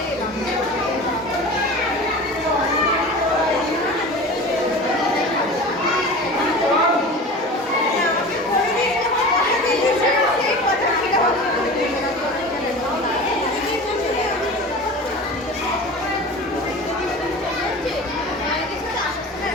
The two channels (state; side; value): normal; both; correlation 0.35